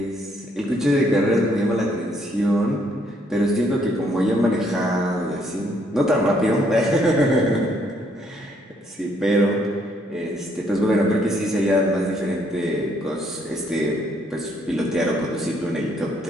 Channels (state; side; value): normal; both; correlation 0.69